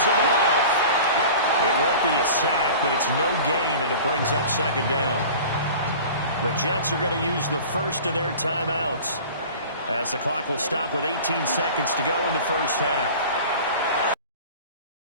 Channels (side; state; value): both; inverted; correlation -0.40